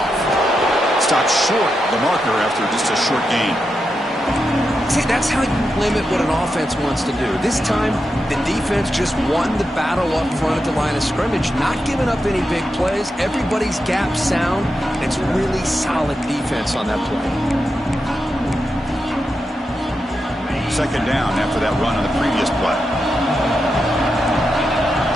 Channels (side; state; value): both; normal; correlation 0.87